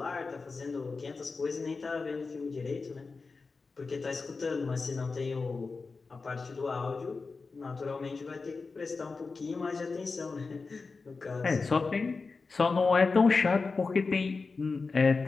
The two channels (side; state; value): right; quieter; 4.3 dB